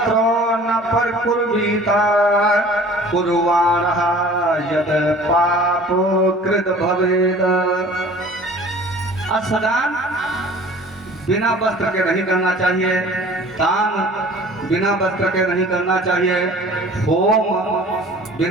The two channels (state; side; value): normal; both; correlation 0.46